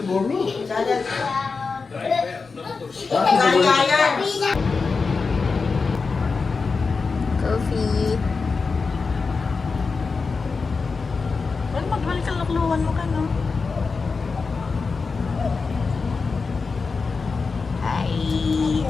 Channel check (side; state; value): right; quieter; 4.6 dB